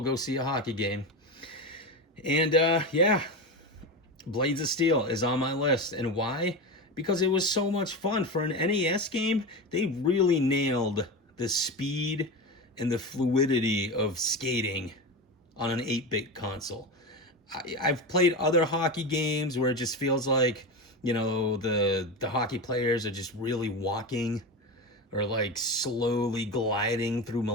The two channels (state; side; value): normal; both; correlation 0.21